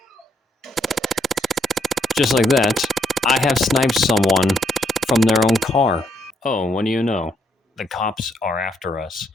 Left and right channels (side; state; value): both; normal; correlation 0.73